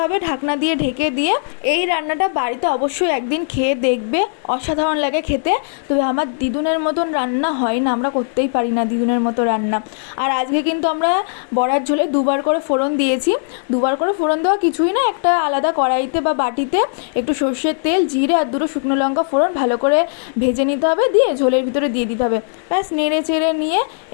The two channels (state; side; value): silent; right; digital silence